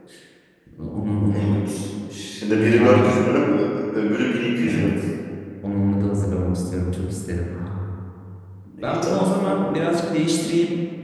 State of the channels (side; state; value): both; identical; correlation 1.00